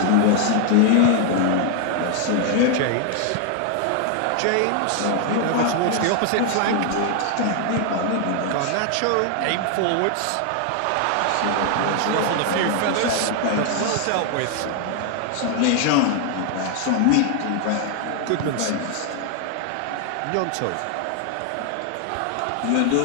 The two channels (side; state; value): both; different; correlation 0.00